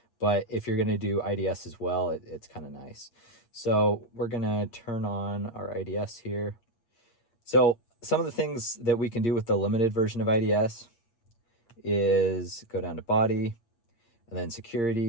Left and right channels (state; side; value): late; right; 8.6 ms